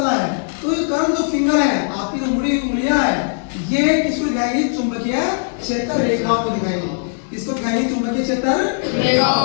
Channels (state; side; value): silent; right; digital silence